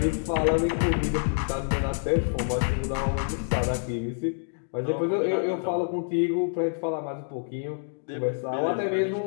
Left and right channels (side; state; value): right; silent; digital silence